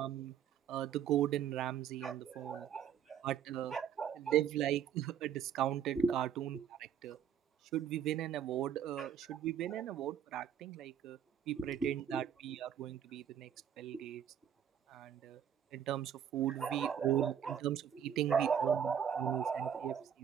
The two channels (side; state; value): left; quieter; 8.8 dB